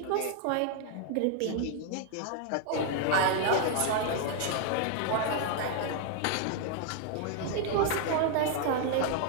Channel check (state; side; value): different; both; correlation 0.00